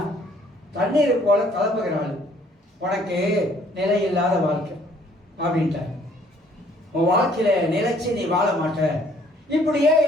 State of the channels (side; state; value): both; normal; correlation 0.61